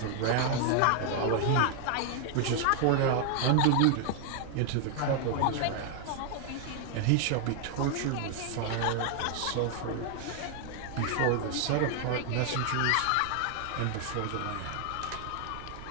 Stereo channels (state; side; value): different; both; correlation 0.00